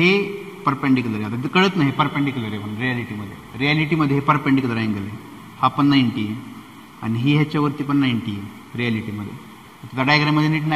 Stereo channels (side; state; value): both; identical; correlation 1.00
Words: परपेंडिक्युलर आहे. आता कळत नाही परपेंडिक्युलर आहे पण रियालिटीमध्ये हे परपेंडिक्युलर अँगल आहे. हा पण 90 आहे आणि ही ह्याच्यावरती पण 90 आहे रियालिटीमध्ये. आता डायग्राममध्ये नीट